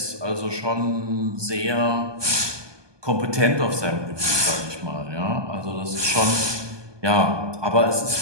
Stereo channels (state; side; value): late; left; 1.2 ms